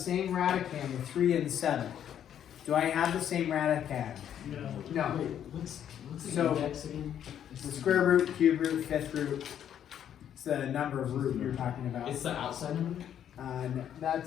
radicand, the 3 and 7. Do I have the same radicand? No. What's So, the square root, cube root, fifth root. It's the number of root you're talking about. It's the outside number? No,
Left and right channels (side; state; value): right; quieter; 9.7 dB